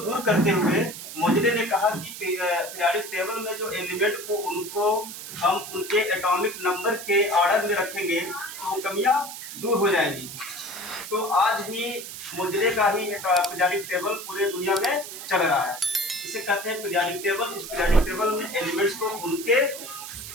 करते हुए मोजले ने कहा कि पीरियाडिक टेबल में जो एलिमेंट को उनको हम उनके एटॉमिक नंबर के ऑर्डर में रखेंगे तो कमियां दूर हो जाएंगी। तो आज भी मोजले का ही पीरियाडिक टेबल पूरे दुनिया में चल रहा है। इसे कहते हैं पीरियाडिक टेबल। इस पीरियाडिक टेबल में एलिमेंट्स को उनके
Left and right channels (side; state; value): right; noise; hiss, 10 dB below the sound